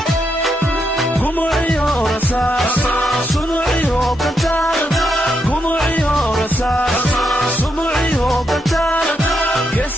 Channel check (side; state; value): both; normal; correlation 0.81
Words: gumuciyo rasaas sumuciyo kantaar gumuciyo rasaas sumuciyo kantaar